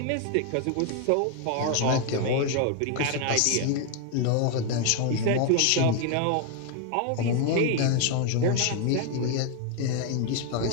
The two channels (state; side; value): different; both; correlation 0.01